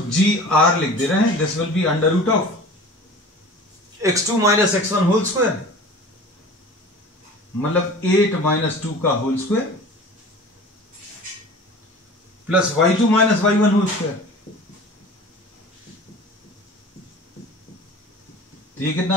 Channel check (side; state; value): both; normal; correlation 0.40